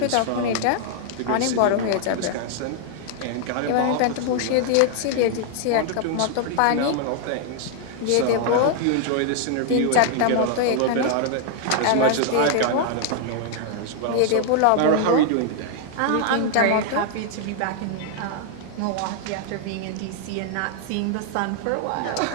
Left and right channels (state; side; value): different; both; correlation 0.00